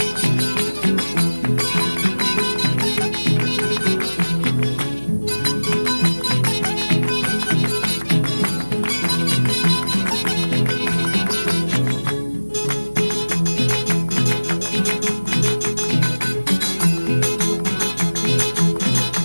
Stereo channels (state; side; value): inverted; both; correlation -1.00